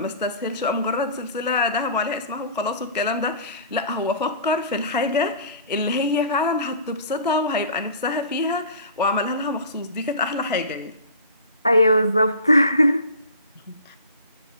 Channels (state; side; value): inverted; both; correlation -0.42